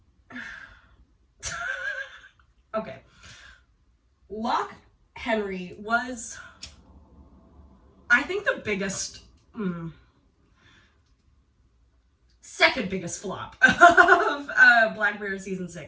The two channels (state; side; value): identical; both; correlation 1.00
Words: Okay. Lock Henry was, I think, the biggest, second biggest flop of Black Mirror Season